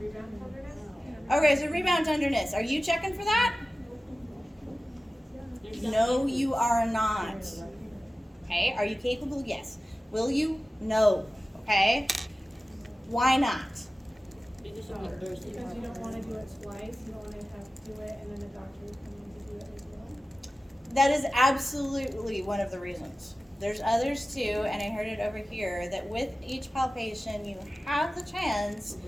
Okay, so rebound tenderness. Are you checking for that? No, you are not. Okay, are you capable? Yes. Will you? No. Okay. Why not? Because you don't want to do it twice, you don't want to have to do it and then the doctor will come in to do it as well. That is absolutely one of the reasons. There's others too, and I heard it over here, that with each palpation, you have the chance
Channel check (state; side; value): normal; both; correlation 0.95